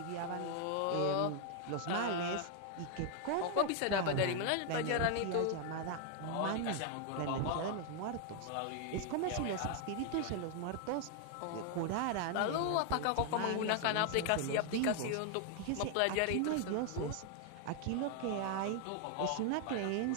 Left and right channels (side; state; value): both; different; correlation 0.00